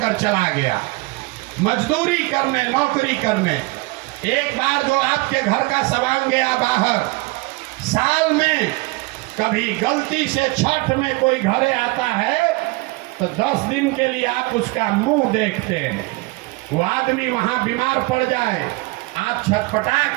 चला गया मजदूरी करने, नौकरी करने। एक बार जो आपके घर का सवांग गया बाहर, साल में कभी गलती से छठ में कोई घरे आता है तो 10 दिन के लिए आप उसका मुंह देखते हैं। वो आदमी वहां बीमार पड़ जाए, आप छटपटा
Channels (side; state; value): left; quieter; 24.6 dB